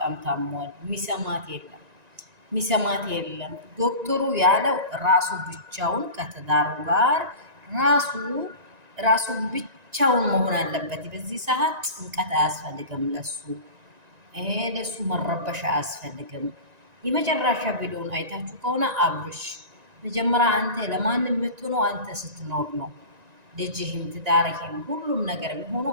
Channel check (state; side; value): late; left; 1.9 ms